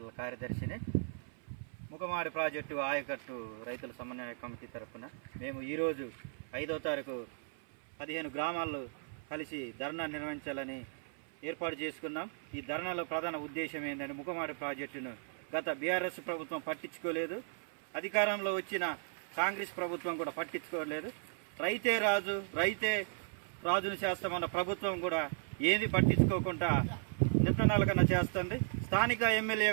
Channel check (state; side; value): silent; left; 54 dB below the other